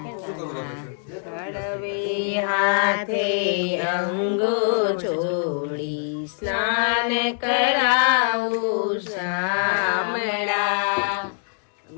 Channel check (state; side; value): silent; right; digital silence